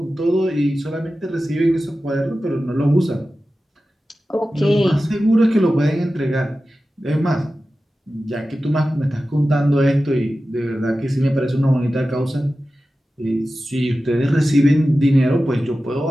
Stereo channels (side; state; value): both; normal; correlation 0.94